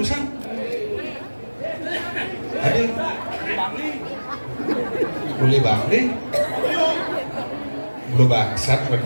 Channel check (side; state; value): both; inverted; correlation -1.00